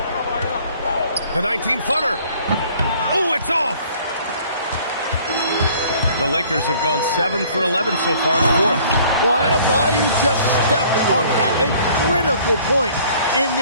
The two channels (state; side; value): inverted; both; correlation -0.55